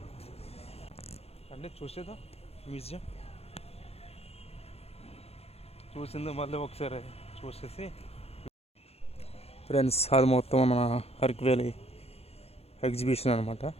అంటే చూసేదా మ్యూజియం చూసింది మళ్ళీ ఒకసారి చూసేసి. ఫ్రెండ్స్, అది మొత్తం మన అరకు వ్యాలీ ఎగ్జిబిషన్ అనమాట.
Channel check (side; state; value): right; late; 0.29 ms